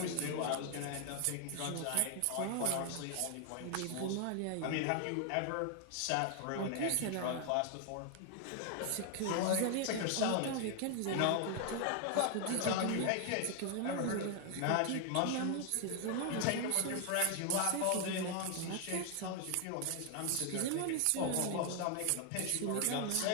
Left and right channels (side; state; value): both; different; correlation 0.00